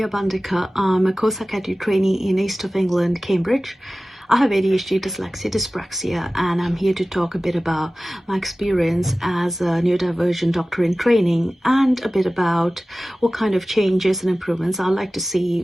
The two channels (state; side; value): normal; both; correlation 0.96